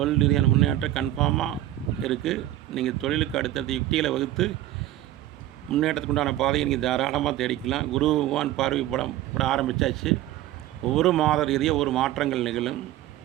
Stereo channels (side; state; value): left; quieter; 14.0 dB